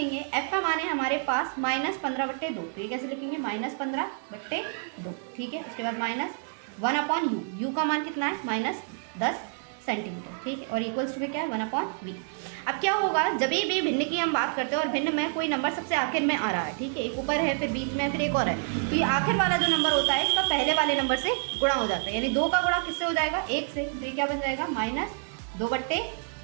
f का मान है हमारे पास -15/2, तो ये कैसे लिखेंगे, -15/2। ठीक है, उसके बाद -1/u, u का मान कितना है, -10 सेंटीमीटर। ठीक है, और इक्वल्स टू में क्या है, 1/v। अब क्या होगा, जब भी भिन्न की हम बात करते हैं और भिन्न में कोई नंबर सबसे आखिर में आ रहा है, ठीक है, एक ऊपर है फिर बीच में फिर एक और है, तो ये आखिर वाला जो नंबर होता है इसका पहले वाले नंबर से गुणा हो जाता है, यानी 2 का गुणा किससे हो जाएगा, 1 से। तो ये क्या बन जाएगा,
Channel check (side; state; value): left; silent; 59 dB below the other